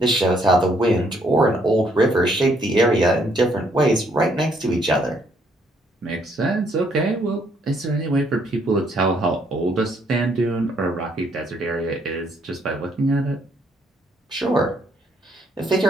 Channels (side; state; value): both; normal; correlation 0.69